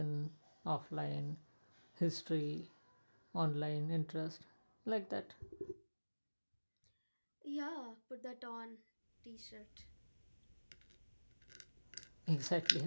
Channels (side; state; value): both; inverted; correlation -1.00